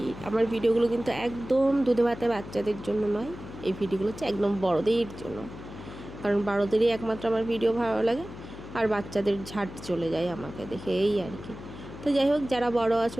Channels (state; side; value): noise; left; hum, 13 dB below the sound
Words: আমার ভিডিওগুলো কিন্তু একদম দুধে ভাতে বাচ্চাদের জন্য নয়। এই ভিডিওগুলো হচ্ছে একদম বড়দের জন্য, কারণ বড়দেরই একমাত্র আমার ভিডিও ভালো লাগে, আর বাচ্চাদের ঝাট চলে যায় আমাকে দেখে, এই আর কি। তো যাই হোক, যারা বড়